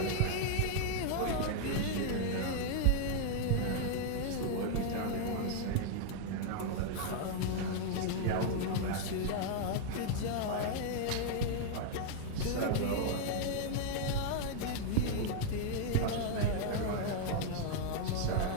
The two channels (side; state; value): both; different; correlation -0.01